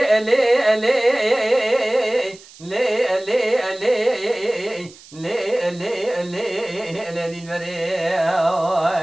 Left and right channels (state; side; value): noise; right; hiss, 22 dB below the sound